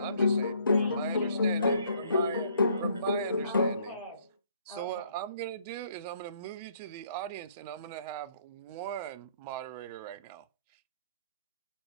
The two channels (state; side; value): inverted; both; correlation -0.64